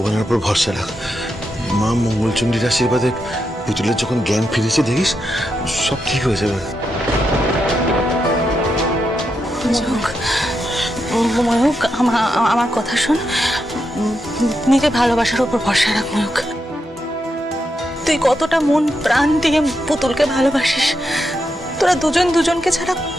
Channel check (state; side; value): normal; both; correlation 0.84